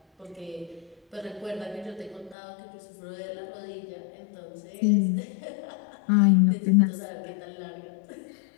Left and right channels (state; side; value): drops out; right; at 2.4 s